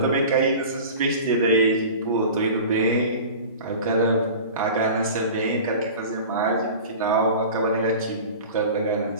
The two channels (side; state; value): both; inverted; correlation -0.37